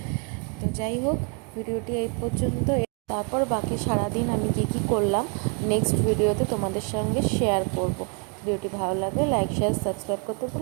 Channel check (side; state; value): left; quieter; 36.2 dB